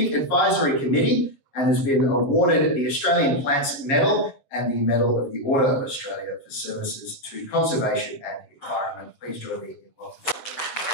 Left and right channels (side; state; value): right; late; 7.4 ms